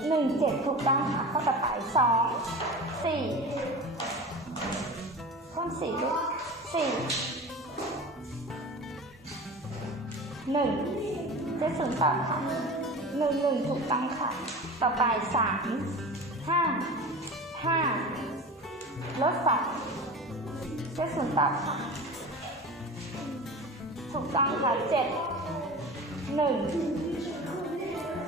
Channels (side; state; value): both; normal; correlation 0.33